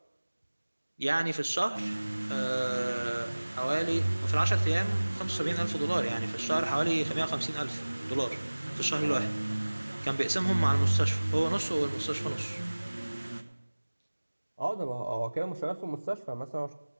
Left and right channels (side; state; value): both; inverted; correlation -1.00